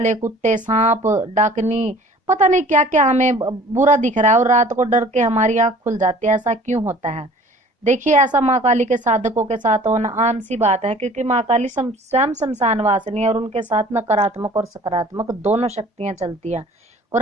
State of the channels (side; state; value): both; normal; correlation 0.49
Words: कुत्ते, सांप, डाकनी, पता नहीं क्या क्या हमें बुरा दिख रहा है और रात को डर के हमारी आंख खुल जाती है। ऐसा क्यों होता है? देखिए, ऐसा माँ काली के साधकों के साथ होना आम सी बात है, क्योंकि माँ काली स्वयं शमशान वासिनी है और उनके साथ नकारात्मक और सकारात्मक दोनों शक्तियां चलती हैं।